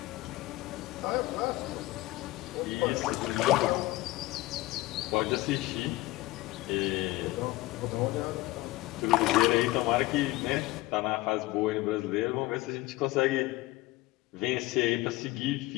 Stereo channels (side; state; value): right; quieter; 18.9 dB